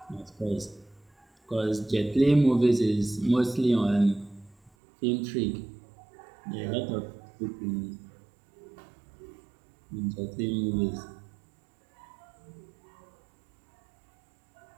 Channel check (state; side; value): drops out; left; at 4.7 s